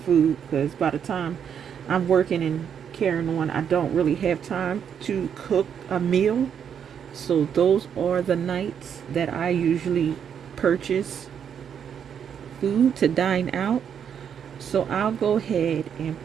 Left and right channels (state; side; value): quieter; left; 8.1 dB